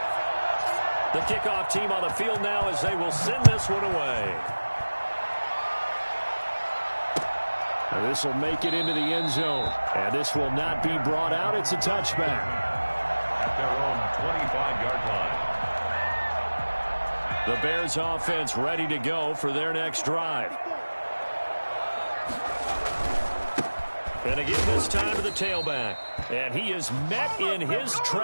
The kickoff team on the field now as they will send this one away. And this will make it into the end zone. And this will not be brought out. It's a touchback. At their own 25-yard line. The Bears offense ready to go for their next drive. And to give this time to the tailback. And he is met in his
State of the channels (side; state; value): both; inverted; correlation -1.00